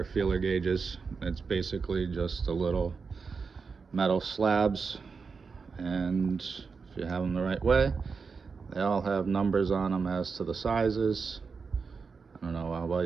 feeler gauges. It's basically just a little metal slabs, and if you have them the right way, they all have numbers on them as to the sizes. I don't know how well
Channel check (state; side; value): quieter; left; 5.1 dB